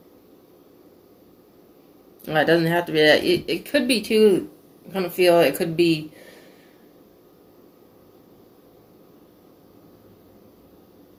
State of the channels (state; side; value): identical; both; correlation 1.00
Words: Well, it doesn't have to be that. It could be too. I kind of feel it could be